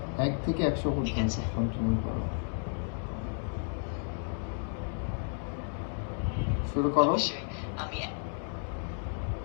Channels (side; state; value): right; silent; 56 dB below the other